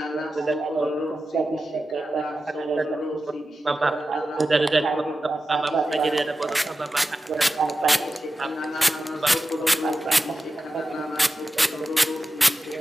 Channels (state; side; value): normal; both; correlation 0.92